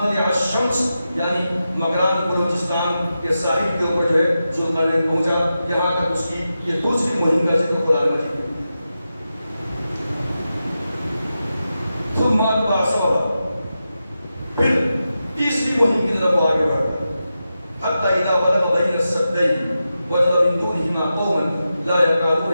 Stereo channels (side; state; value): both; inverted; correlation -0.90